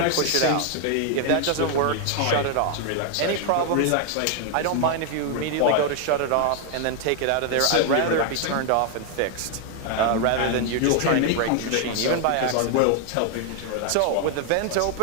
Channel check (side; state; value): both; different; correlation 0.00